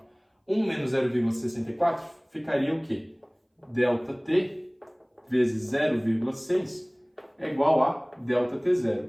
1 menos 0,64 ficaria o quê? ΔT vezes 0,6 é igual a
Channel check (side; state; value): both; identical; correlation 1.00